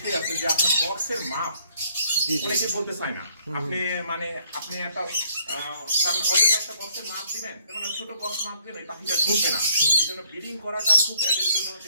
আছে যে আপনার বক্সের মাপ অনেকে বলতে চায় না। আপনি একটা অযথা একটা বক্সের মাপ দিবেন, যেমন ছোট বক্স মাপ দিবেন, এই পাখিটা ঢুকবে না। এই জন্য ব্রিডিং করাটা খুব এদের জন্য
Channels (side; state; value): both; inverted; correlation -0.64